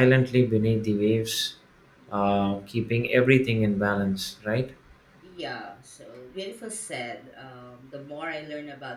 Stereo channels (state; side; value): identical; both; correlation 1.00